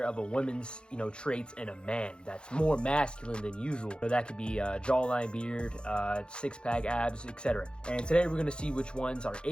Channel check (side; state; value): right; late; 0.052 ms